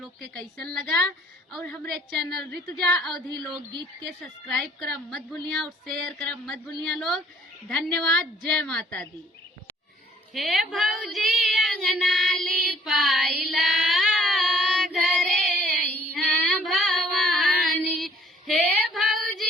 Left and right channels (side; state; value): both; normal; correlation 0.58